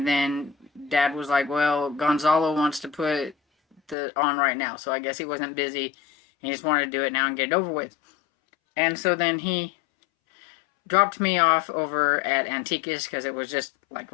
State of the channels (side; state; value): right; drops out; at 4.0 s